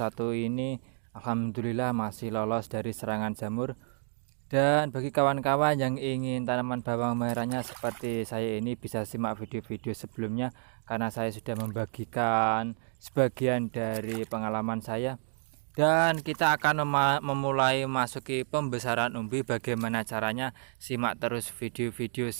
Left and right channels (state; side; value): silent; left; digital silence